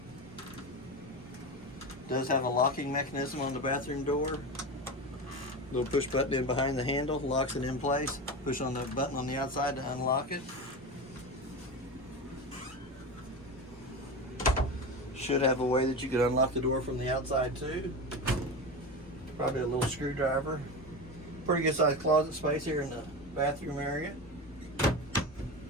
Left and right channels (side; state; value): both; normal; correlation 0.23